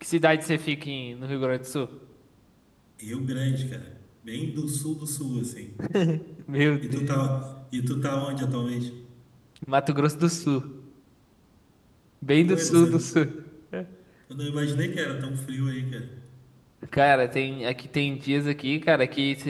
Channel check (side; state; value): both; identical; correlation 1.00